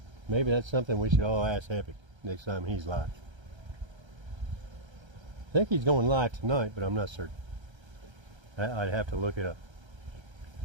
Maybe that's something we should all ask Epic next time he's live. I think he's going live tonight, but I'm not certain. I'd have to look it up.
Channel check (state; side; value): late; left; 1.3 ms